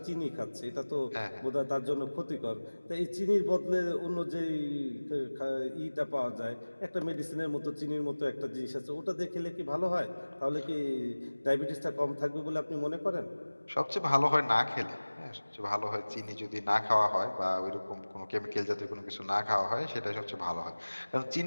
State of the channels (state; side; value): inverted; both; correlation -1.00